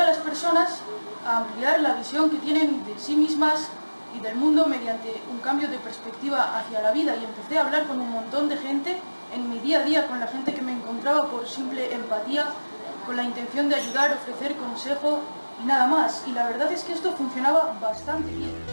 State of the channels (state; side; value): inverted; both; correlation -1.00